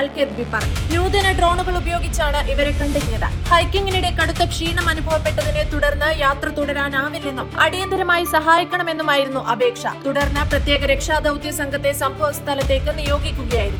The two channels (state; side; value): identical; both; correlation 1.00